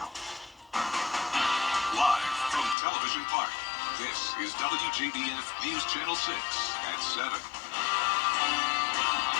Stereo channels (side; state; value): right; drops out; at 2.8 s